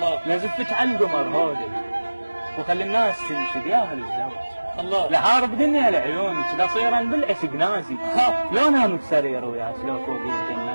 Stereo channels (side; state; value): both; inverted; correlation -1.00